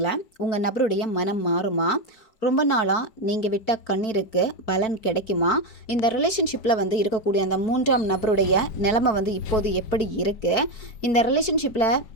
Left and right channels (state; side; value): late; right; 4.6 ms